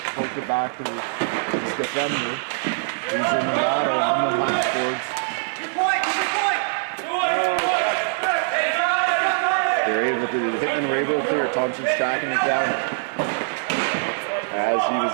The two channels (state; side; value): silent; left; digital silence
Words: poked it back to his defender, who's in the battle on the half boards. The Hitmen were able to clear. Thompson's tracking it down as he was